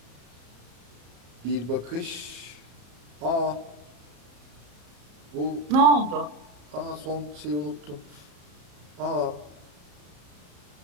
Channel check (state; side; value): late; left; 34 ms